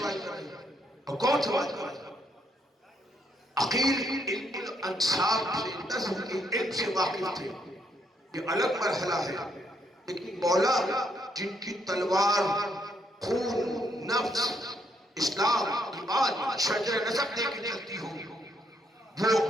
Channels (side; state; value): both; normal; correlation 0.74